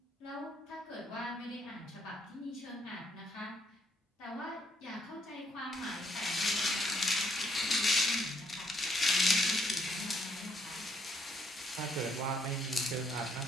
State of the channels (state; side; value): normal; both; correlation 0.71